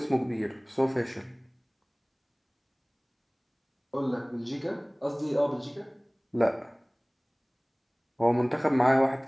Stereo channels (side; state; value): both; identical; correlation 1.00